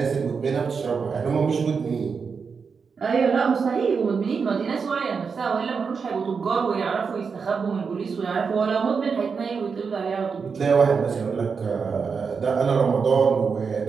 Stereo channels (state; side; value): quieter; left; 5.6 dB